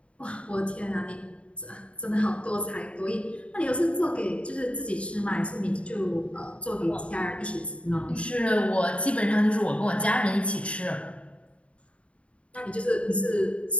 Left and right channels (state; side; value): late; right; 0.061 ms